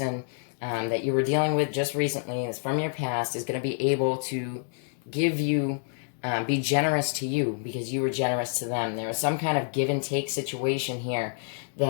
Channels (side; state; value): right; silent; 59 dB below the other